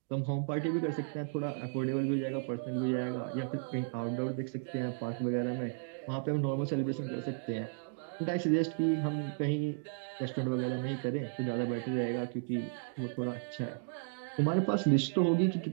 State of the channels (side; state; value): left; silent; digital silence